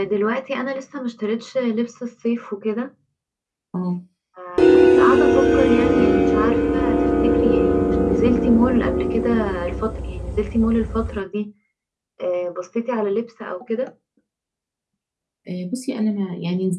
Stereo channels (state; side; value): identical; both; correlation 1.00